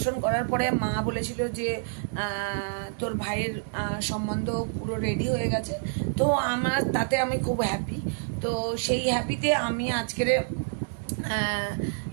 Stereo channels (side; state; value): left; silent; digital silence